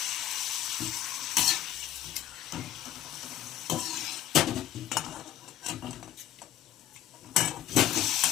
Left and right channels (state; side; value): quieter; right; 12.4 dB